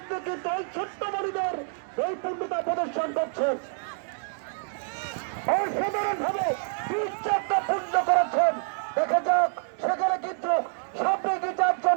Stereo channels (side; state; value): left; silent; digital silence